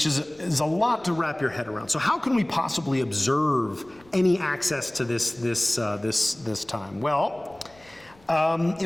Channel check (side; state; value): left; noise; rumble, 29 dB below the sound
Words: is a lot to wrap your head around. So how can we possibly observe any access to this time? Well,